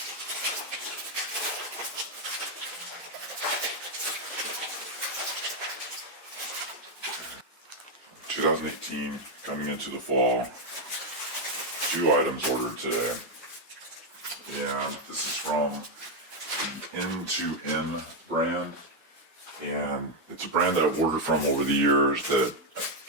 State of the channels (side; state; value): both; normal; correlation 0.03